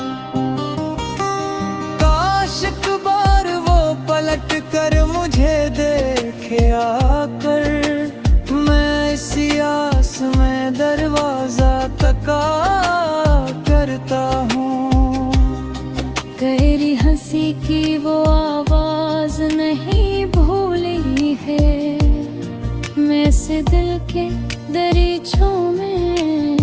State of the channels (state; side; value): identical; both; correlation 1.00